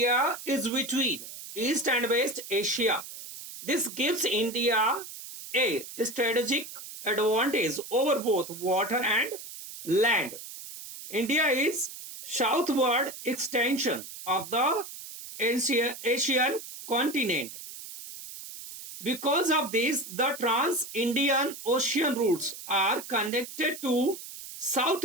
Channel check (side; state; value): right; noise; hiss, 12 dB below the sound